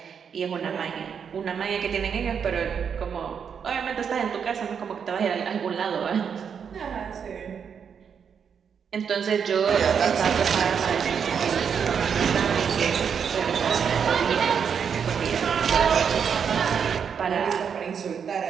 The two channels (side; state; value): left; quieter; 7.1 dB